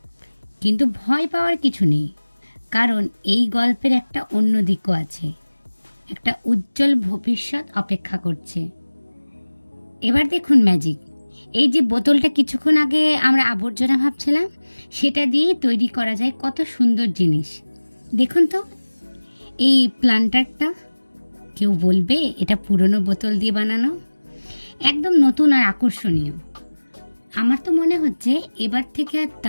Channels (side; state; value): both; inverted; correlation -1.00